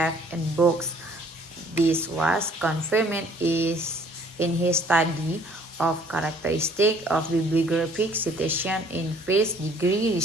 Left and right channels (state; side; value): normal; both; correlation 0.57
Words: in books. This was confirmed in his study of characteristics of bibliographic citation in first degree